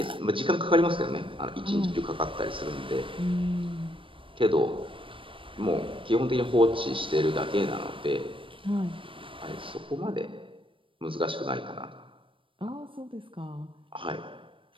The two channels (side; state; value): left; late; 0.25 ms